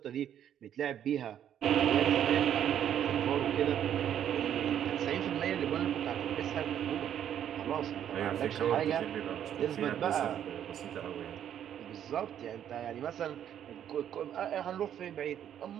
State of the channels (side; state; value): left; quieter; 10.0 dB